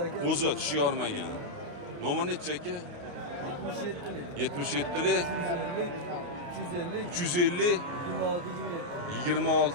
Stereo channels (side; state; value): left; late; 28 ms